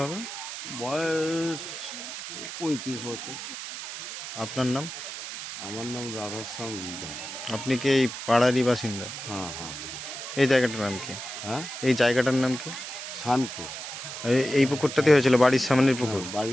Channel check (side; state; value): right; noise; hiss, 8 dB below the sound